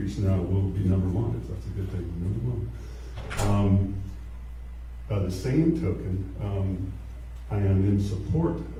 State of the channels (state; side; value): identical; both; correlation 1.00